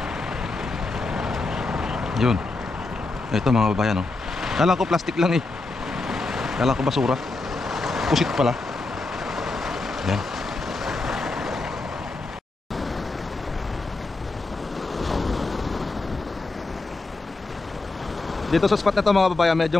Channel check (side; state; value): right; quieter; 3.4 dB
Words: Yun. Ito mga kababayan, oh. Kala ko plastic lang eh. Kala ko basura. Pusit pala. Yan. Dito sa spot na to mga kababayan, medyo